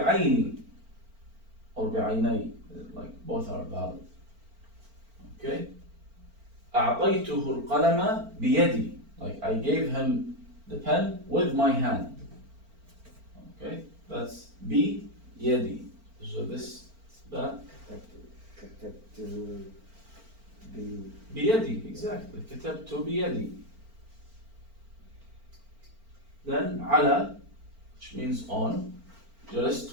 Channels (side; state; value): left; late; 4.4 ms